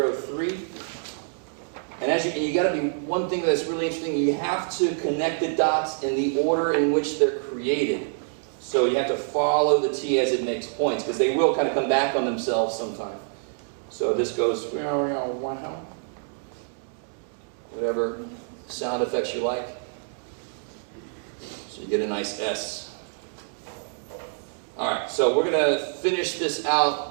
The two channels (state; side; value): silent; left; digital silence